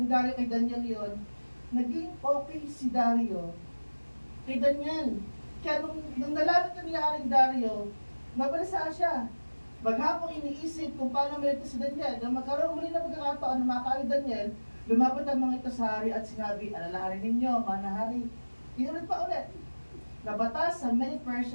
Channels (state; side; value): inverted; both; correlation -1.00